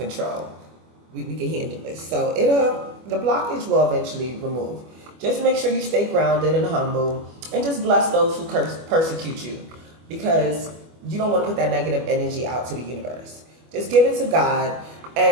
We can handle this. So the blockage will eventually remove. Just make sure you stay grounded and humble and just bless those who persecute you, because you don't want to put that negative energy out to the universe. Just give it to God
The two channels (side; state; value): left; late; 25 ms